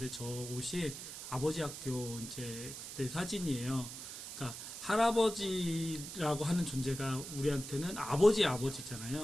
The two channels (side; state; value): right; noise; hiss, 9 dB below the sound